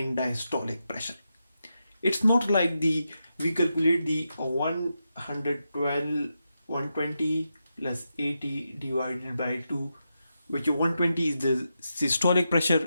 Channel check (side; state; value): both; inverted; correlation -0.87